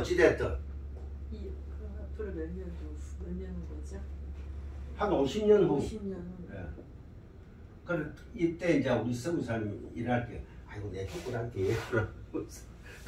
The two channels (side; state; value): both; identical; correlation 1.00